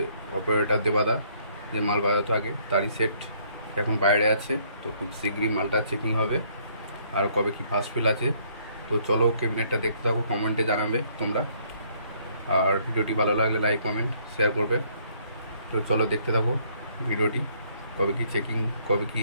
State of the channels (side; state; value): both; inverted; correlation -0.65